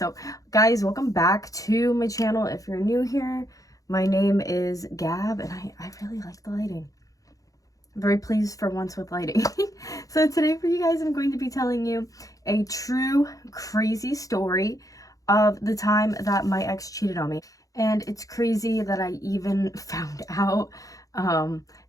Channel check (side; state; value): right; late; 0.17 ms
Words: guys, welcome back to my channel. If you're new here, my name is Gab, and I really like the lighting. I'm very pleased for once with lighting. So today for you guys, I'm going to be telling you a true crazy story of the time that my ex cheated on me. And it's crazy that I even found out.